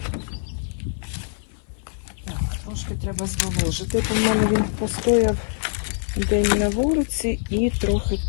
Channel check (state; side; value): silent; right; 58 dB below the other